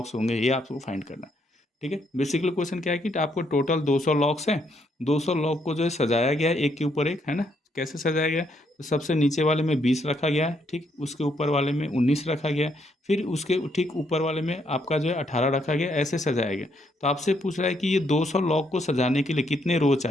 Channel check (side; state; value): both; normal; correlation 0.73